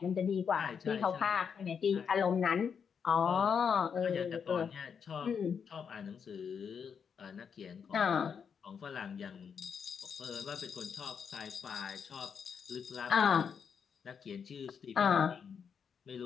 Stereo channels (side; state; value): right; quieter; 6.8 dB